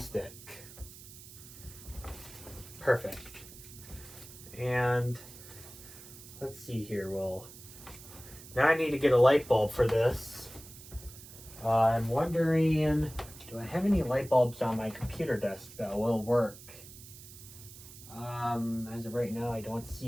Perfect. And let's see here. Well, now I need to get a light bulb for this. I'm wondering, do I have any light bulbs on my computer desk that will work? As of right now, I don't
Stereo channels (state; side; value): noise; right; hiss, 17 dB below the sound